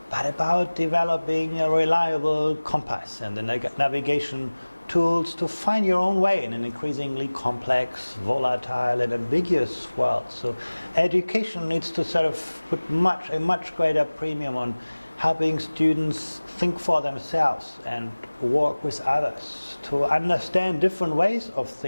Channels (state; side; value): inverted; both; correlation -1.00